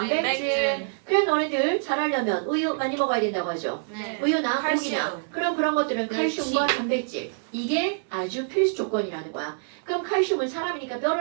그럼 너네들 자라려면 우유 많이 먹어야 된다고 하죠. 우유나 고기나 그럼 그런 것들은 칼슘과 단백질 이게 아주 필수 조건이라는 거야. 그럼 칼슘은 사람이니까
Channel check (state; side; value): silent; left; 61 dB below the other